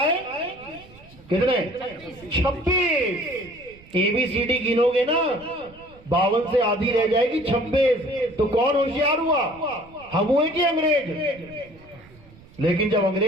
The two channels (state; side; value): noise; right; rumble, 24 dB below the sound